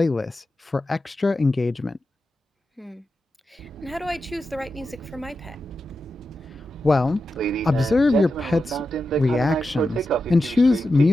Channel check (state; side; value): normal; both; correlation 0.90